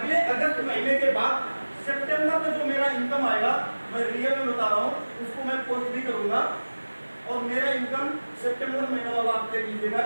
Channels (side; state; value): both; inverted; correlation -1.00